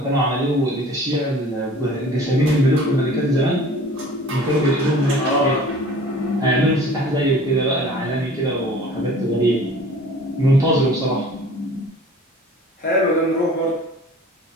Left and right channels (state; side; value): normal; both; correlation 0.46